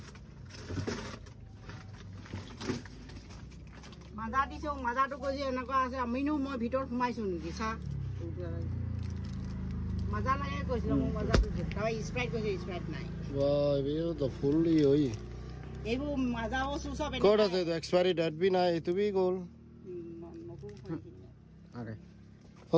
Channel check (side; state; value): both; identical; correlation 1.00